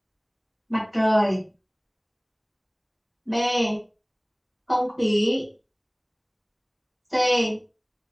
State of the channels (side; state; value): both; identical; correlation 1.00